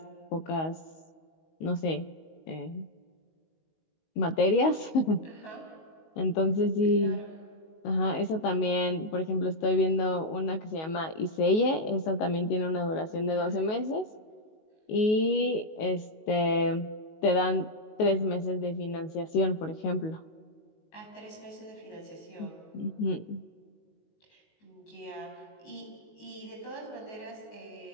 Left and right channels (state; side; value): late; right; 19 ms